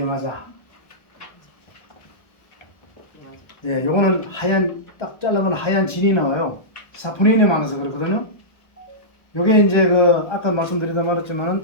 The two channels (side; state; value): right; late; 1.3 ms